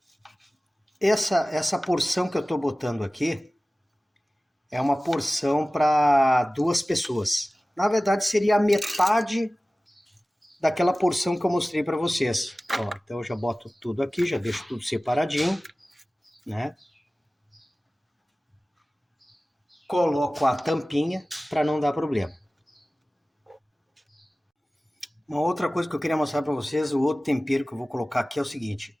Essa porção que eu estou botando aqui é uma porção para 2 pessoas. Na verdade, seria a metade daquela porção que eu mostrei para vocês. Ó, então eu já boto tudo aqui, já deixo tudo separadinho, né? Coloco a tampinha para não dar problema. Uma outra coisa que eu queria mostrar para vocês, o outro tempero que eu vou colocar aqui é o seguinte.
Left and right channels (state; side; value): normal; both; correlation 0.97